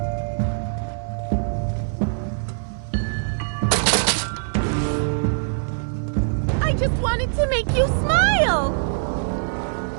I just wanted to make you smile.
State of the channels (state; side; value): silent; left; 58 dB below the other